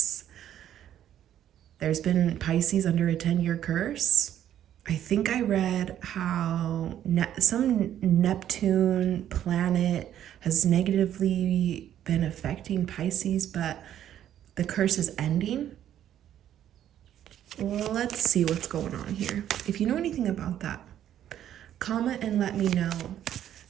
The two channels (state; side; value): quieter; left; 11.0 dB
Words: There's been Pisces under a 10-year curse. I think I read how some Neptune planet has negatively been affecting Pisces, but the curse is ending. Well, let's see what's going on here. If you know anything about that, comment and let me know.